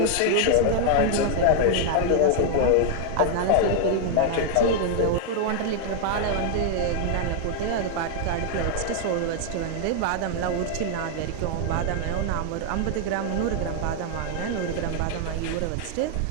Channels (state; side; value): different; both; correlation 0.00